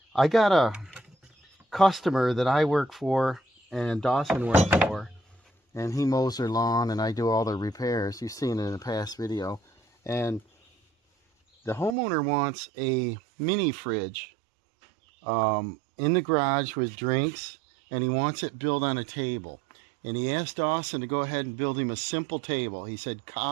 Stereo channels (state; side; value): drops out; left; at 12.0 s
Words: I got a customer that I work for and Dawson works for, and he mows their lawn and I do all the repairs. You've seen it in a past video. And the homeowner wants a mini fridge in the garage with drinks, and he wants it built on a table. And he asked Dawson to go ahead and build him a simple table. He said